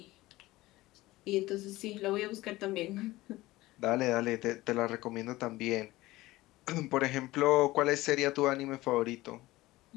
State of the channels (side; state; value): right; quieter; 18.4 dB